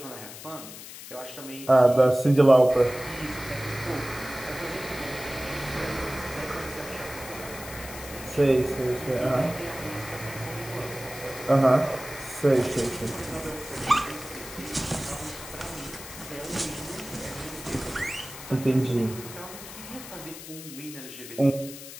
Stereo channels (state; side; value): noise; left; hiss, 13 dB below the sound